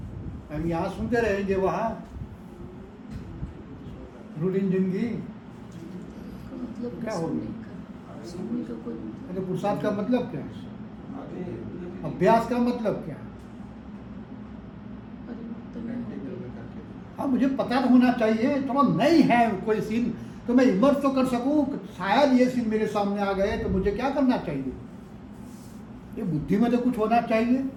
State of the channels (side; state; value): both; identical; correlation 1.00